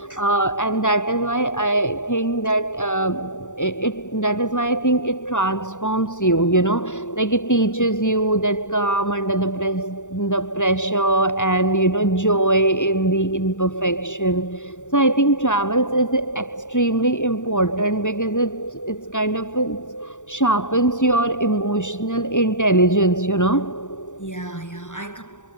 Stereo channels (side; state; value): right; late; 0.86 ms